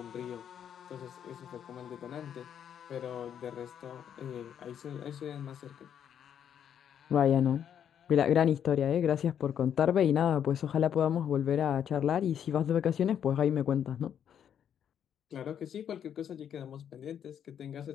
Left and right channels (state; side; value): quieter; right; 8.9 dB